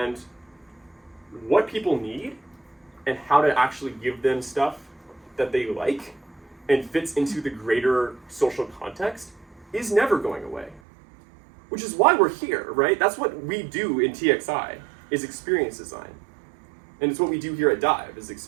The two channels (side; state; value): left; drops out; at 10.8 s